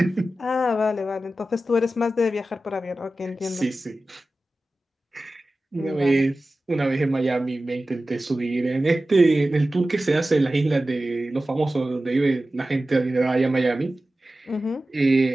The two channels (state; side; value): normal; both; correlation 0.95